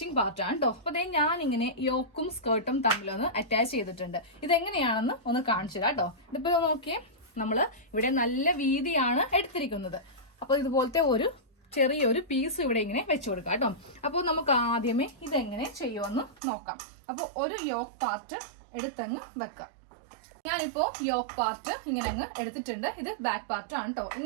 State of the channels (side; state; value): left; drops out; at 16.4 s